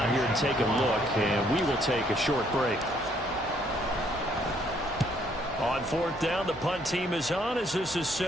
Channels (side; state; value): both; normal; correlation 0.67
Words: here and take a look, and we will take a short break. On fourth down, the punt team is on as this is